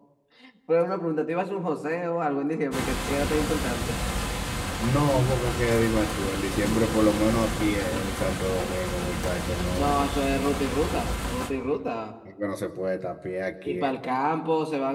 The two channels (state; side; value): identical; both; correlation 1.00